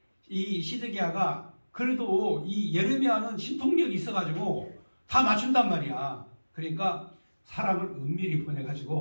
이 시드기야가 그래도 이 예레미야는 신통력이 있어가지고 다 맞춘단 말이야. 그러니까 사람을 은밀히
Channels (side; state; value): both; inverted; correlation -1.00